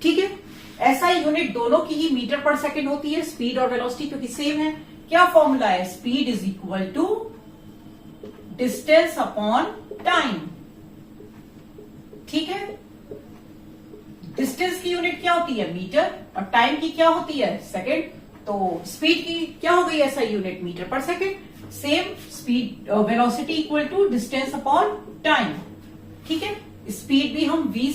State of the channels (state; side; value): identical; both; correlation 1.00